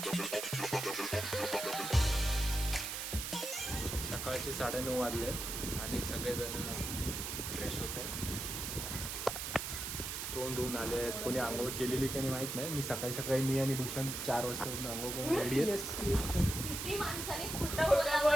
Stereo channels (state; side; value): noise; right; hiss, 4 dB below the sound